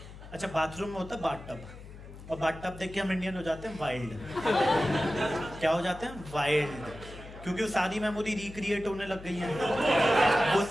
अच्छा बाथरूम में होता है बाथटब, और बाथटब देख के हम इंडियन हो जाते हैं वाइल्ड। क्या हो जाते हैं? वाइल्ड। क्योंकि वो सारी मेमोरी रिक्रिएट होने लग गई है। वो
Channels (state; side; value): noise; left; hum, 15 dB below the sound